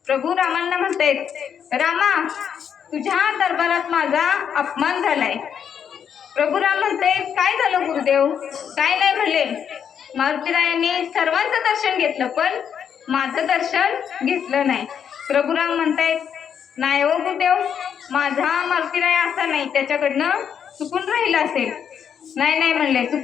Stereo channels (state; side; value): quieter; right; 8.0 dB